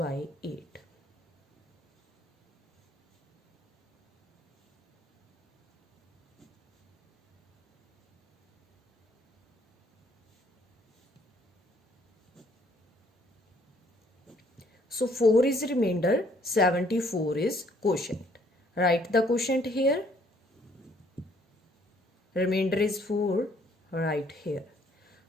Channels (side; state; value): both; normal; correlation 0.64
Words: 8। So 4 is remainder, 74 is quotient. Write the quotient here. Remainder is 4, right here.